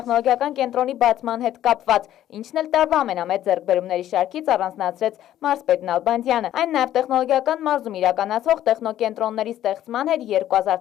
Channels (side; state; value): right; quieter; 12.3 dB